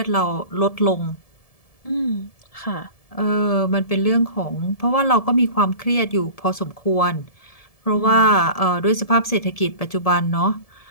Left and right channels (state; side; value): late; right; 1.7 ms